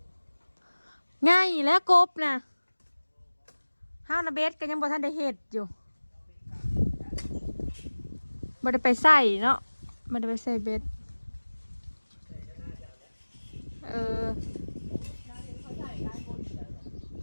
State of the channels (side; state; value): both; inverted; correlation -1.00